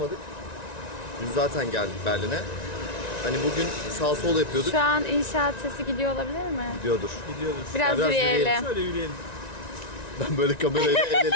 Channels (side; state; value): right; late; 1.9 ms